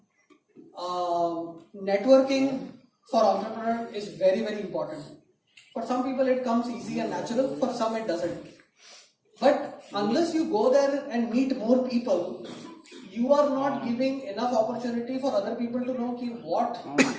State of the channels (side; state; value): both; identical; correlation 1.00